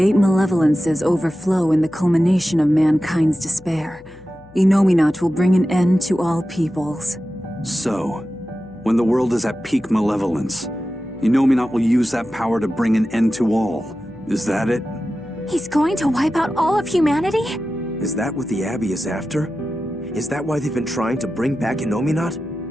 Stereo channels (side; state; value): left; noise; hum, 25 dB below the sound